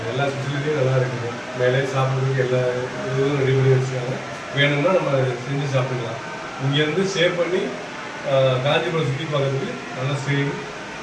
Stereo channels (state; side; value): identical; both; correlation 1.00